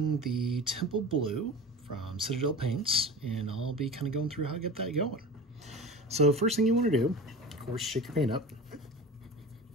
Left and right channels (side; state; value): both; normal; correlation 0.33